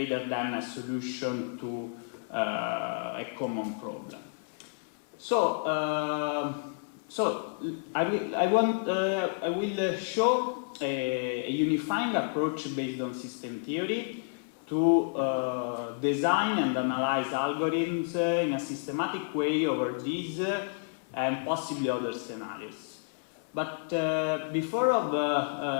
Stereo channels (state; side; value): silent; right; digital silence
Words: than a solution to a common problem. So I will show a unifying approach based on system theory to design and analyze algorithms in a systematic way over these and possibly other scenarios. But before